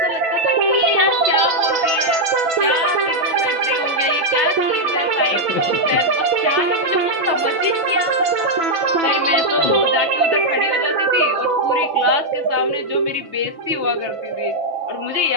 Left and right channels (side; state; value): left; late; 6.0 ms